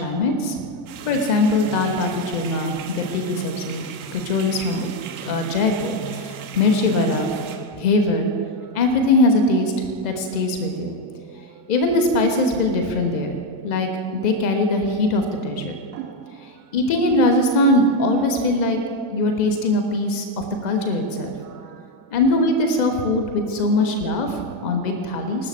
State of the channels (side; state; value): left; late; 2.0 ms